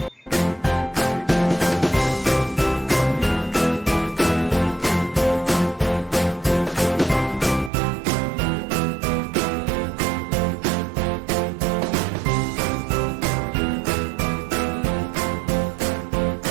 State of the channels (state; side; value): drops out; left; at 7.7 s